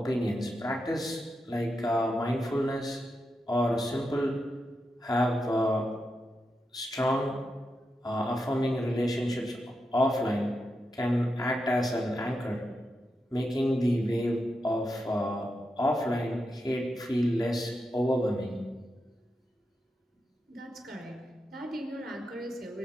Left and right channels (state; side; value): normal; both; correlation 0.87